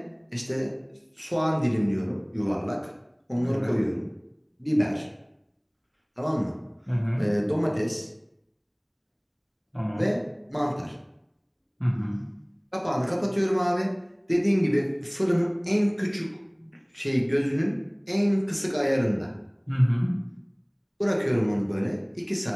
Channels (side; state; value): both; identical; correlation 1.00